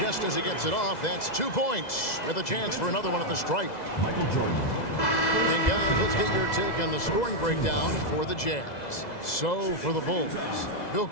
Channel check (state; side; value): late; right; 2.0 ms